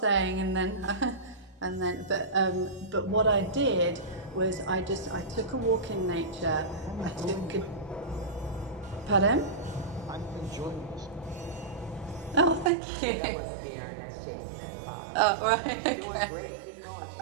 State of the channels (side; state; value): left; drops out; at 12.7 s